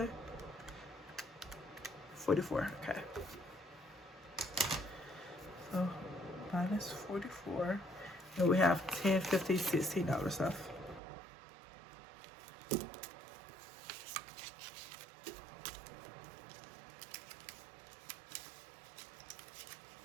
44. Okay. So minus 44, and we have $10, $50, $16 left.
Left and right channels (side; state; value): left; drops out; at 11.0 s